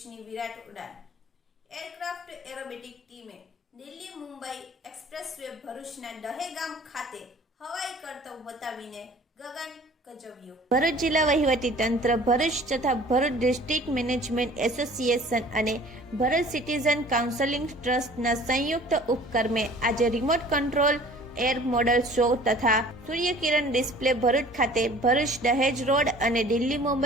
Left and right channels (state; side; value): normal; both; correlation 0.48